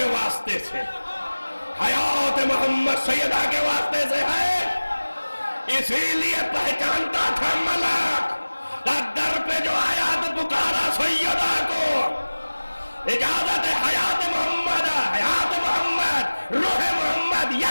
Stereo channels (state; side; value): inverted; both; correlation -1.00